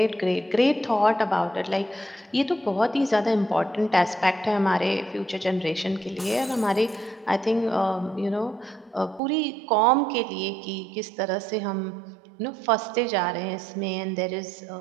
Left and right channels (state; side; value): drops out; left; at 9.2 s